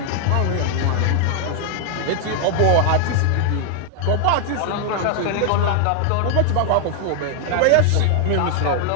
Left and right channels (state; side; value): different; both; correlation 0.00